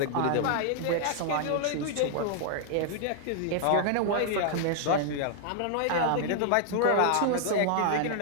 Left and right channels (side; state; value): both; different; correlation -0.01